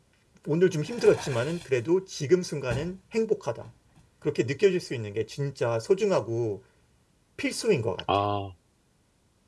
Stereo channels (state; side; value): identical; both; correlation 1.00